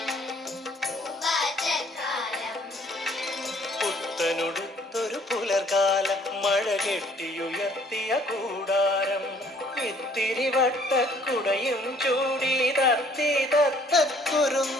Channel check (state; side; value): normal; both; correlation 0.60